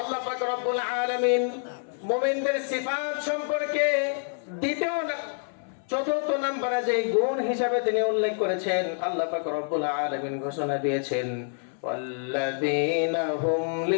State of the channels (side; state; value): right; silent; 60 dB below the other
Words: পাক রব্বুল আলামিন মুমিনদের সিফাত সম্পর্কে চতুর্থ নম্বরে যে গুণ হিসাবে তিনি উল্লেখ করেছেন, আল্লাহ পাক রব্বুল আলামিন ঘোষণা দিয়েছেন ওয়াল্লাযীনা হুম